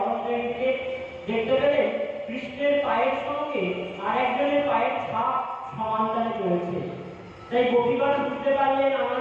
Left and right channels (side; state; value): both; identical; correlation 1.00